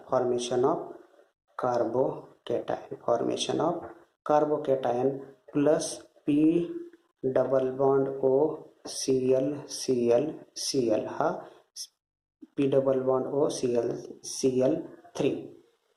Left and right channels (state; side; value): identical; both; correlation 1.00